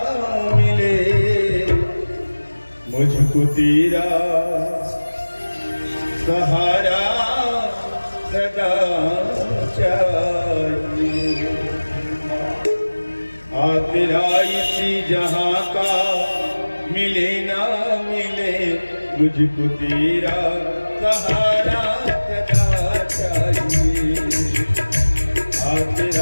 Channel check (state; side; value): inverted; both; correlation -1.00